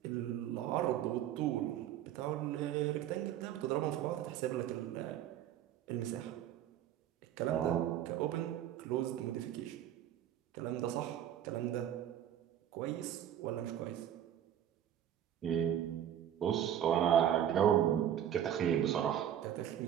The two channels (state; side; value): quieter; left; 10.5 dB